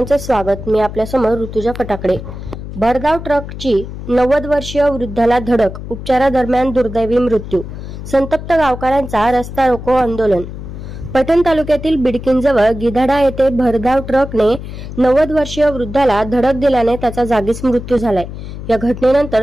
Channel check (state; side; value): noise; left; hum, 10 dB below the sound